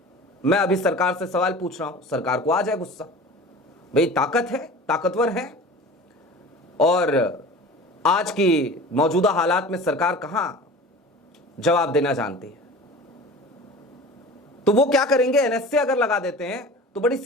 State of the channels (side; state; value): both; normal; correlation 0.38